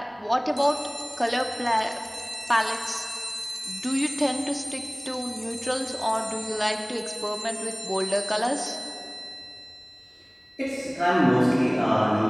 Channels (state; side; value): identical; both; correlation 1.00